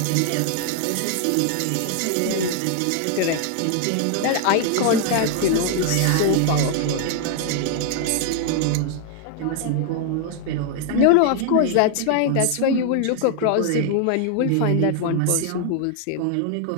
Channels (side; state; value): both; different; correlation 0.00